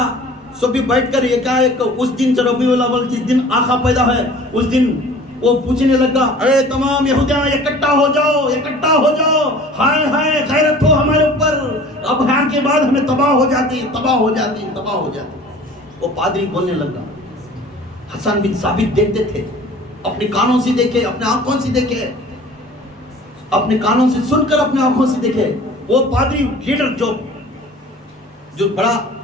سب بھی بیٹھ کر یہ کہا کہ اس دن ربیع الاول جس دن آقا پیدا ہے اس دن وہ پوچھنے لگا اے تمام یہودیاں اکٹھا ہو جاؤ، ہائے ہائے غیرت ہو ہمارے اوپر، اب یہاں کے بعد ہمیں تباہ ہو جاتی. وہ پادری بولنے لگا. حسن بن ثابت دیکھتے تھے، اپنے کانوں سے دیکھے، اپنے آنکھوں سے دیکھے، اپنے کانوں سے سن کر اپنے آنکھوں سے دیکھے. وہ پادری لیڈر جو بڑا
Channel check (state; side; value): normal; both; correlation 0.46